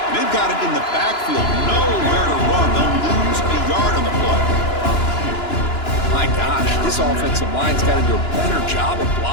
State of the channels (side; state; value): right; late; 2.9 ms